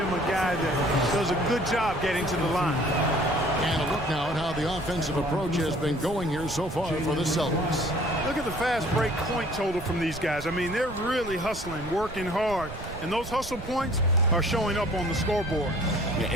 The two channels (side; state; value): right; noise; rumble, 12 dB below the sound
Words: a guy that does a good job getting to the line. And a look now at how the offensive approach has been going here so far for the Celtics. Look at the fast break point total from these guys. I mean, they're really hustling, working hard, and those hustle points are showing up on the scoreboard. Yeah,